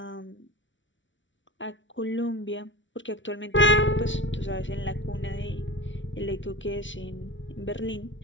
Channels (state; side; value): late; right; 0.55 ms